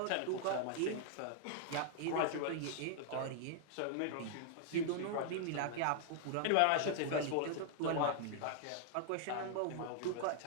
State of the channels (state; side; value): different; both; correlation -0.01